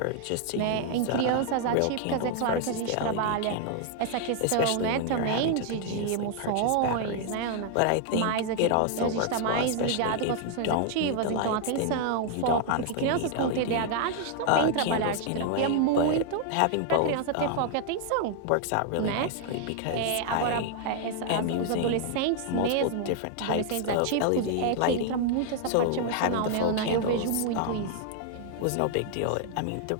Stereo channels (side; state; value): both; different; correlation 0.00